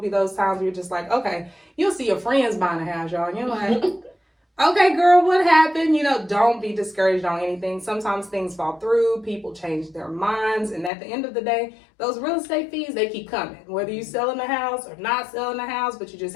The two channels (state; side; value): drops out; right; at 10.9 s